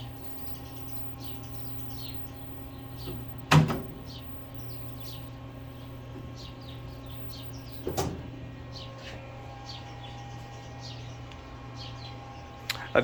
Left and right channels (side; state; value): both; identical; correlation 1.00